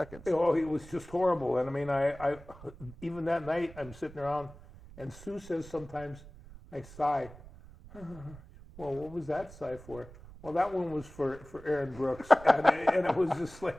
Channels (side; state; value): right; noise; rumble, 18 dB below the sound